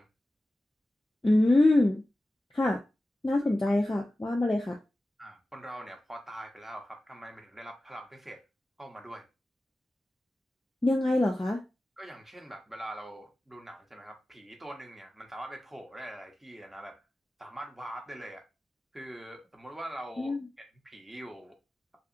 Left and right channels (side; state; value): both; normal; correlation 0.95